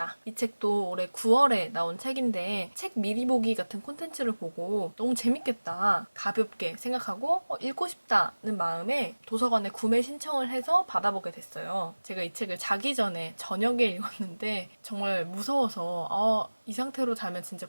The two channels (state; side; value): inverted; both; correlation -1.00